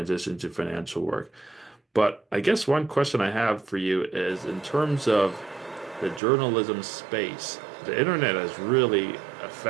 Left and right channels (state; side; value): drops out; left; at 6.2 s